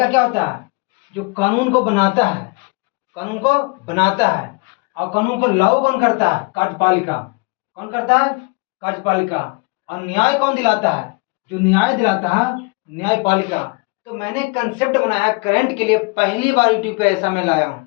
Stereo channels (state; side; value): quieter; right; 29.3 dB